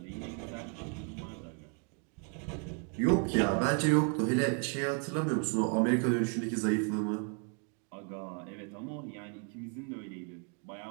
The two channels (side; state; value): left; quieter; 39.3 dB